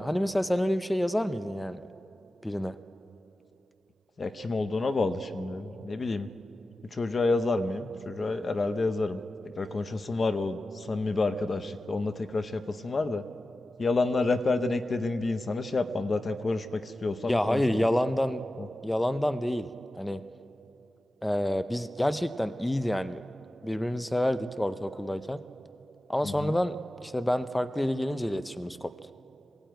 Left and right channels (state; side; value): normal; both; correlation 0.94